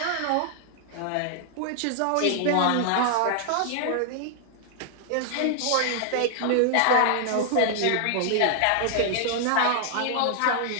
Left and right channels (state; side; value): different; both; correlation 0.00